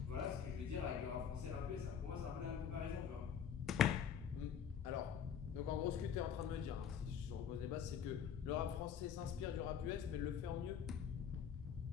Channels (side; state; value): right; quieter; 8.0 dB